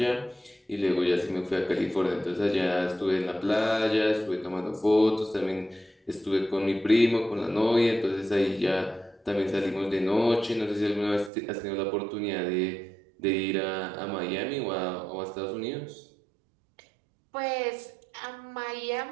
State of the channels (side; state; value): left; drops out; at 11.3 s